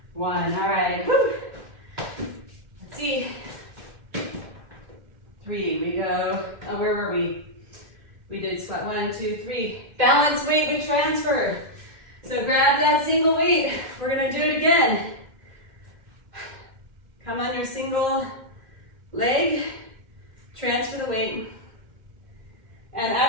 1. All right, woo. Let's see. 3, we go, where were we? We did squat 1, 2, 3. Balance weight, we transfer. So grab that single weight. We're gonna do it again. Come on your single leg, transfer the weight. And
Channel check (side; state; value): left; late; 2.8 ms